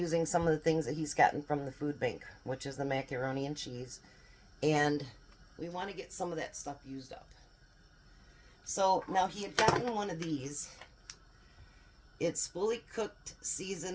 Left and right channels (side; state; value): both; identical; correlation 1.00